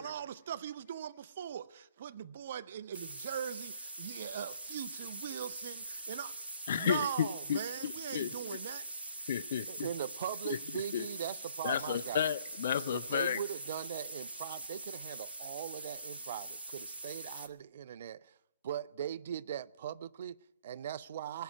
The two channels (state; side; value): inverted; both; correlation -0.59